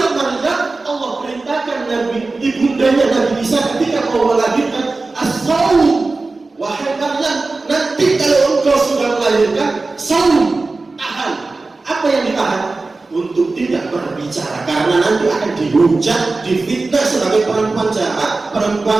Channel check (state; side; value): quieter; left; 3.6 dB